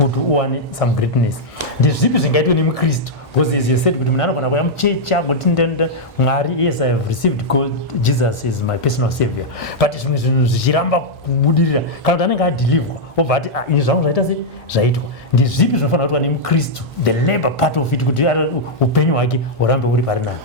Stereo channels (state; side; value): normal; both; correlation -0.05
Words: earn some greatness. The zip is engaged in Christ. Because as you said, yes, I have received God, Jesus is my personal savior. But it's Jiramba Budira, Kaldananga deliver. But in some writers, Zaito. The zip is in Christ, the labor part of it could open or Rambo.